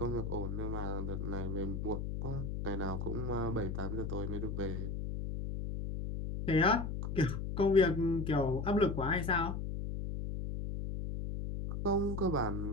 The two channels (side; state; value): left; noise; hum, 3 dB below the sound